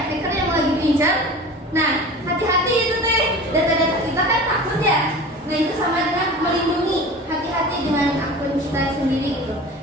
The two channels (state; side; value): normal; both; correlation 0.37